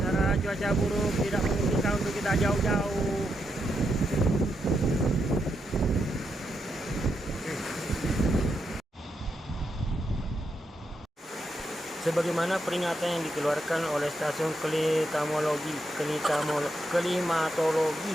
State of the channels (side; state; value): both; normal; correlation 0.83